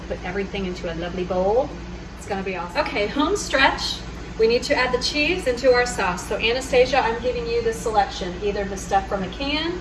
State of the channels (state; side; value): identical; both; correlation 1.00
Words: put everything into a lovely bowl. It's going to be awesome. Okay, home stretch. We need to add the cheese into our sauce. So Anastasia, I'm giving you the selection, either the stuff from a can,